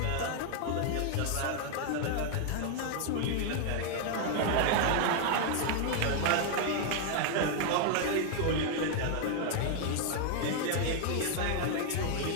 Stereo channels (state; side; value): different; both; correlation 0.00